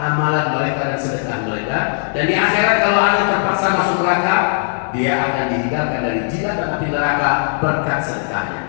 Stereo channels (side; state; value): right; silent; 60 dB below the other